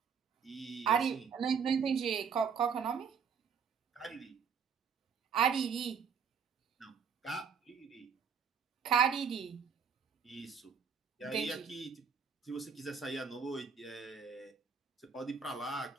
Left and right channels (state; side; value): quieter; left; 6.4 dB